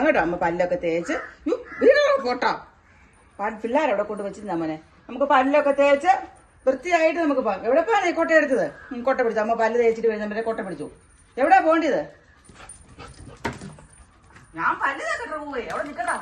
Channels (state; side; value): identical; both; correlation 1.00